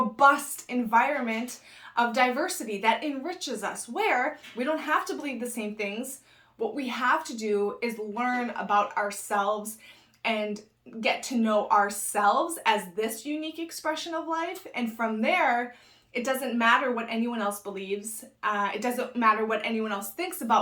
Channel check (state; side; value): identical; both; correlation 1.00